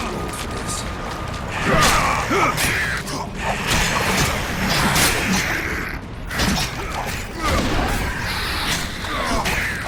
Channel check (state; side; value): identical; both; correlation 1.00